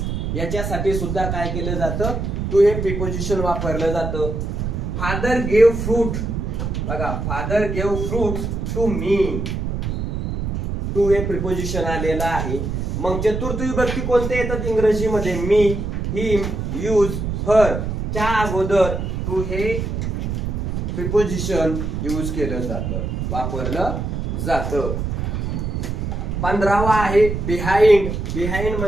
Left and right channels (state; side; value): noise; right; rumble, 2 dB below the sound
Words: याच्यासाठी सुद्धा काय केलं जातं, टू हे प्रिपोजिशन वापरलं जातं. Father gave fruit. बघा, father gave fruit to me. To हे प्रिपोजिशन आलेलं आहे. मग चतुर्थ विभक्ती कोणते येतात इंग्रजीमध्ये, मी, हिम, यूज, हर च्या अगोदर टू हे प्रिपोजिशन यूज केलं जातं, वापरलं जातं. 15वा आहे बिहाइंड. बिहाइंड